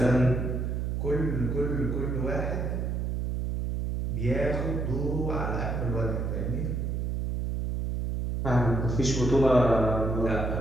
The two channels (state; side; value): noise; right; hum, 1 dB below the sound